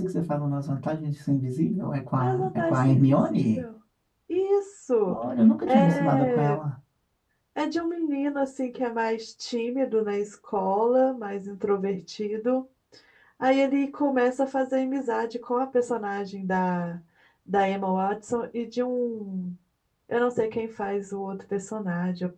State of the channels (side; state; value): both; identical; correlation 1.00